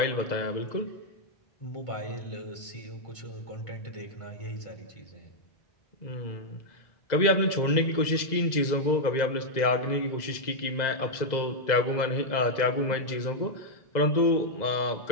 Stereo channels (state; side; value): late; right; 2.0 ms